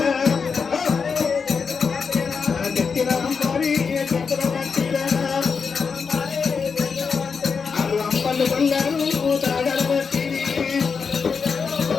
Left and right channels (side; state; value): right; quieter; 5.6 dB